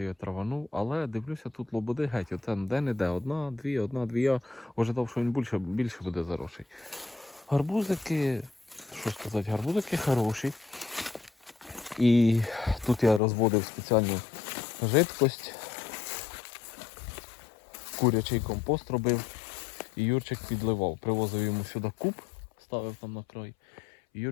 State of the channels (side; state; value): right; drops out; at 13.2 s